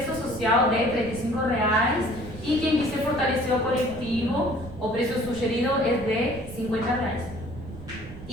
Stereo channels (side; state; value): right; noise; rumble, 14 dB below the sound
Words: social de R$35 e quem quiser fortalecer o coletivo, o preço sugerido é de R$50.